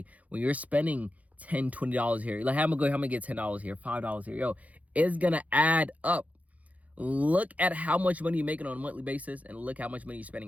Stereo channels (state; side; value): late; left; 0.071 ms